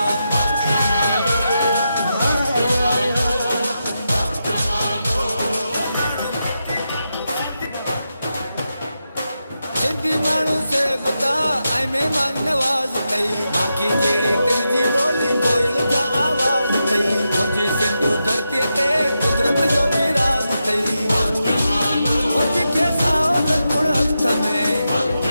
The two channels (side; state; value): both; inverted; correlation -0.87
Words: माण्हू से बता ऐं महिमान नवाज़ कई बाक़ी जहिड़ी तुंहिंजी ॿोली कोयल जा आवाज़ कई मुंहिंजी सिंधू धरतीअ ते कुदरत जो बि राज़ अथई मुंहिंजे साओ गुण हथ में